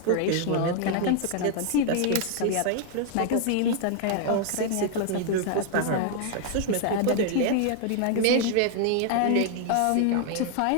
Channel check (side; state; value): both; different; correlation 0.00